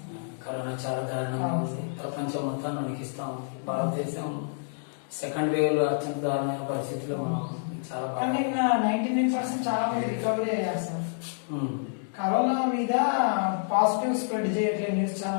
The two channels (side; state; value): right; silent; digital silence